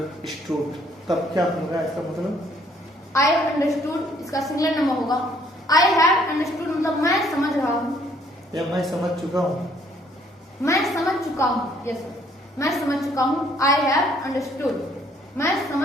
तब क्या होगा इसका मतलब? आई हैव अंडरस्टूड इसका सिंगुलर नंबर होगा आई हैव अंडरस्टूड मतलब मैं समझ रहा हूँ या मैं समझ चुका हूँ। मैं समझ चुका हूँ। यस सर, मैं समझ चुका हूँ। आई हैव अंडरस्टूड, मैं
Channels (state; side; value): normal; both; correlation 0.64